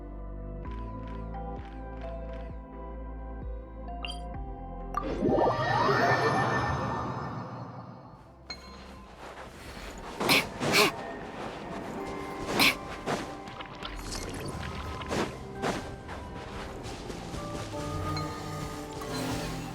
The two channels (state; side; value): identical; both; correlation 1.00